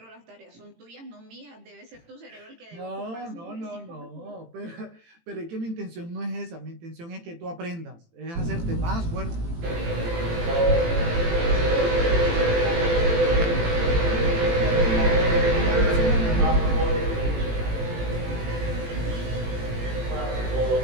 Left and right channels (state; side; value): late; left; 18 ms